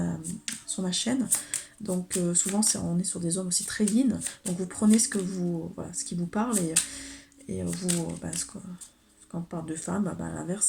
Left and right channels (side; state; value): both; identical; correlation 1.00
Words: chaîne. Donc souvent, on est sur des hommes aussi très yin. Donc vous prenez ce qui vous parle et vous, quand on parle de femme, à l'inverse,